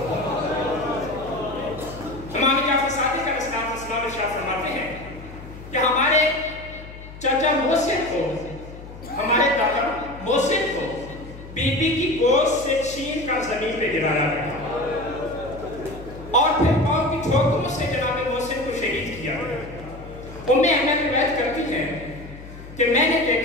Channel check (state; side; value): noise; left; hum, 15 dB below the sound